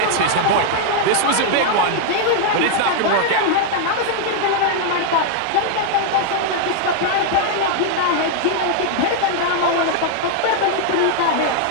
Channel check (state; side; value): different; both; correlation 0.00